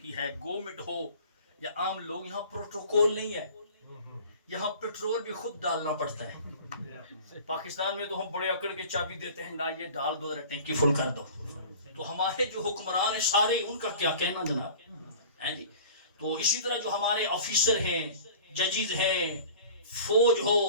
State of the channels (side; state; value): both; inverted; correlation -0.43